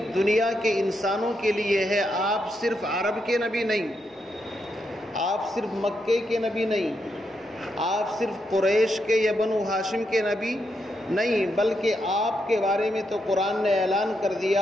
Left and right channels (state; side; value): normal; both; correlation 0.82